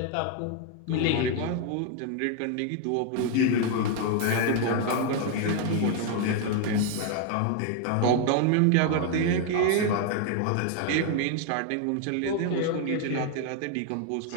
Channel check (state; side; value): different; both; correlation 0.00